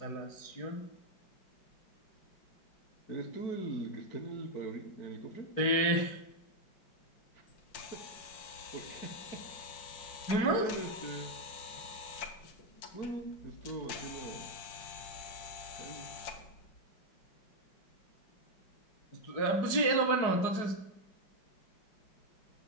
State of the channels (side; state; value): right; late; 4.8 ms